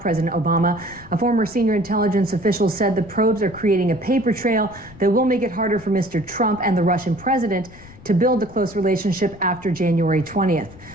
Obama, a former senior intelligence official said the probes are creating a paper trail that will make it harder for Mr. Trump and the Russian president to build a close relationship after January 20th.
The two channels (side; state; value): left; noise; rumble, 20 dB below the sound